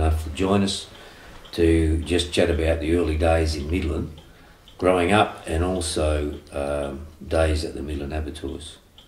to join us to just chat about the early days in Midland, growing up, and also days at the Midland Abattoirs.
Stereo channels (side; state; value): both; identical; correlation 1.00